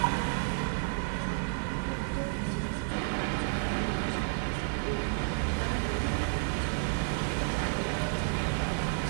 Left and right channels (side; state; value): left; silent; 57 dB below the other